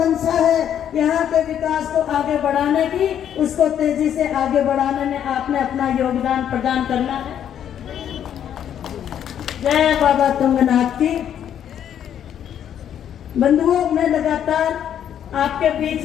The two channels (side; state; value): right; quieter; 9.7 dB